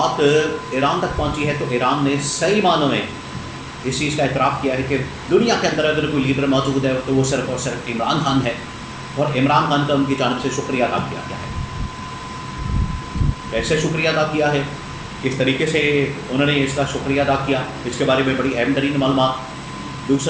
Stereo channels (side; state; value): both; identical; correlation 1.00